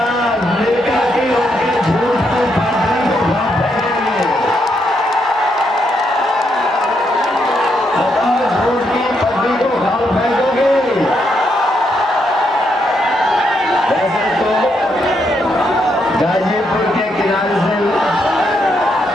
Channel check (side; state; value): both; normal; correlation 0.78